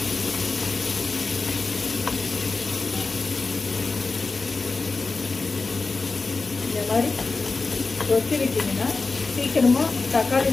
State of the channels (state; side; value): quieter; right; 3.9 dB